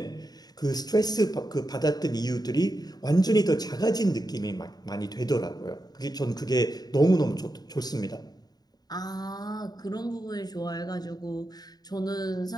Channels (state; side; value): late; right; 0.19 ms